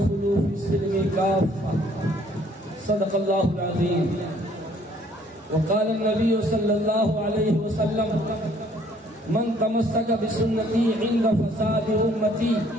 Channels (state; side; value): normal; both; correlation 0.61